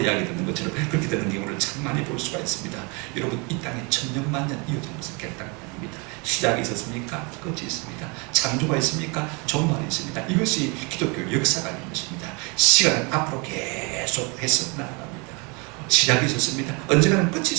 듣는 것처럼 그렇게 되는 경우를 참 많이 볼 수가 있습니다. 여러분, 이 땅에 천년만년 이어진 것은 결단이 아닙니다. 시작이 있었습니까? 끝이 있습니다. 창조가 있습니까? 종말이 있습니다. 이것이 기독교 역사가 있는 것입니다. 시간은 앞으로 계속 해서 나아갑니다. 시작이 있었습니다. 언젠가는 끝이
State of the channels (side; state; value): left; quieter; 30.7 dB